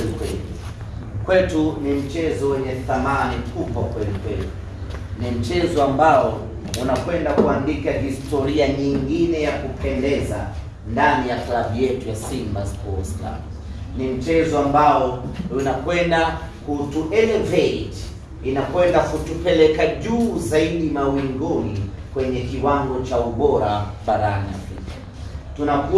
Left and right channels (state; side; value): identical; both; correlation 1.00